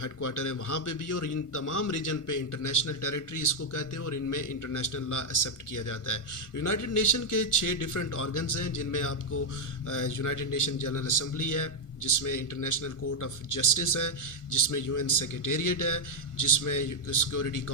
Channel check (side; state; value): right; late; 1.4 ms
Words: ہیڈ کوارٹر ہے وہاں پہ بھی، اور ان تمام ریجن پہ انٹرنیشنل ٹیریٹری اس کو کہتے ہیں، اور ان میں انٹرنیشنل لا ایکسیپٹ کیا جاتا ہے۔ یونائٹڈ نیشن کے 6 ڈفرینٹ آرگنز ہیں، جن میں آپ کو یونائٹڈ نیشن جنرل اسمبلی ہے، جس میں انٹرنیشنل کورٹ آف جسٹس ہے، جس میں UN سیکریٹریٹ ہے، جس میں سیکورٹی